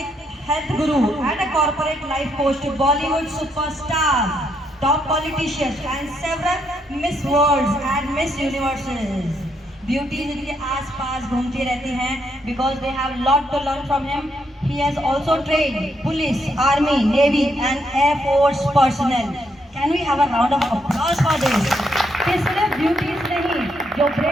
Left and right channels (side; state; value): both; normal; correlation 0.76